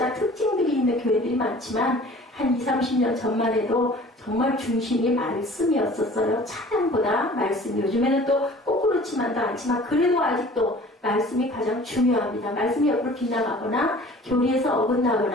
특징들이 있는 교회들이 많지만 한 20, 30년 전만 해도 정말 중심이 말씀이었었어요. 찬양보다 말씀. 요즘에는 또 꼭 그렇지만도 않지만 그래도 아직도 말씀이 가장 중요합니다. 말씀이 옆으로 빗나가거나 교리에서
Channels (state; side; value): normal; both; correlation 0.47